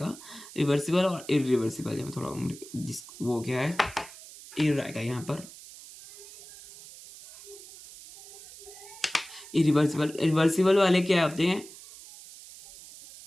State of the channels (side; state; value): right; noise; hiss, 17 dB below the sound